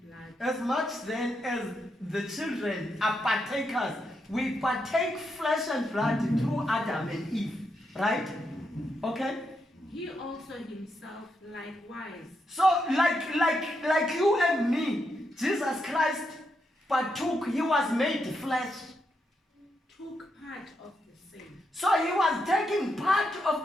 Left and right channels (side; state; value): both; normal; correlation 0.82